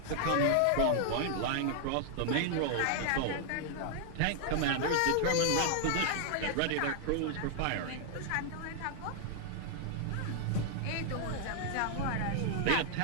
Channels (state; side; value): different; both; correlation 0.00